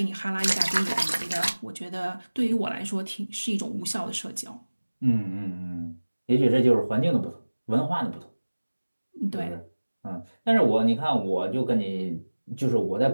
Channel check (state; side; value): inverted; both; correlation -1.00